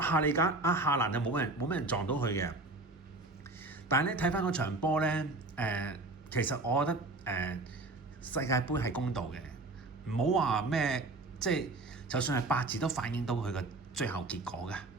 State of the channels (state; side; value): quieter; left; 3.1 dB